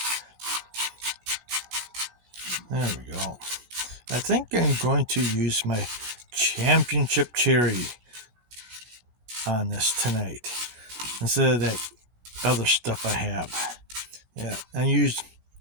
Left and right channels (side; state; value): left; late; 17 ms